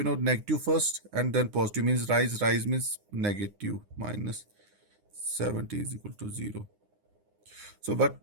negative first and then positive means rise means negative, minus 70 is equal to 0. So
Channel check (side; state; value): left; late; 9.7 ms